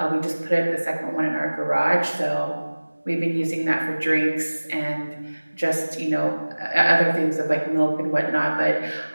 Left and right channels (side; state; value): both; inverted; correlation -1.00